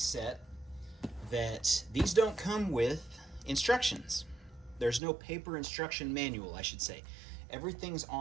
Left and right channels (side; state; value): left; drops out; at 5.0 s